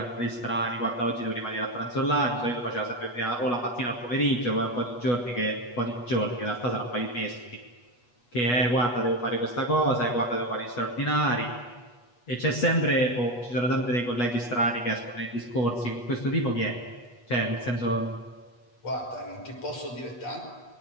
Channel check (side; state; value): right; late; 8.2 ms